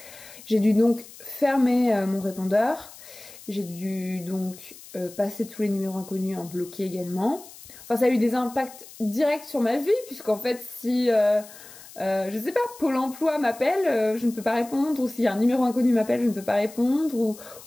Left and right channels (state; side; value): noise; left; hiss, 19 dB below the sound